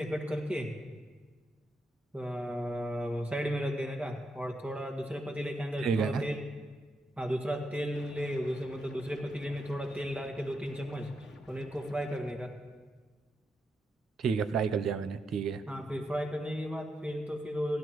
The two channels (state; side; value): normal; both; correlation 0.83